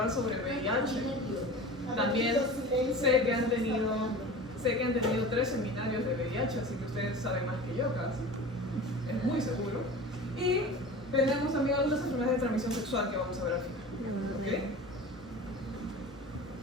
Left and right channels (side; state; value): both; normal; correlation 0.36